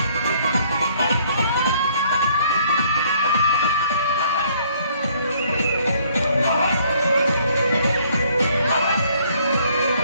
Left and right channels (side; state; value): both; inverted; correlation -0.62